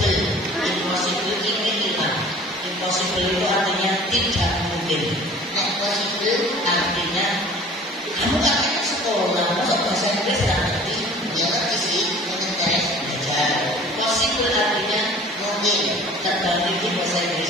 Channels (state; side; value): normal; both; correlation 0.47